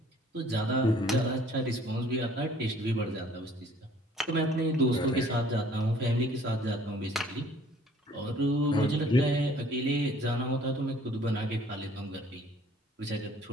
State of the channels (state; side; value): normal; both; correlation 0.56